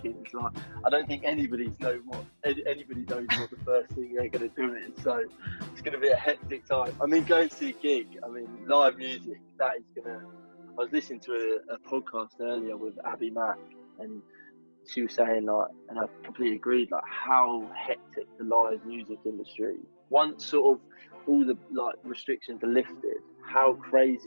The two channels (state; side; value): inverted; both; correlation -1.00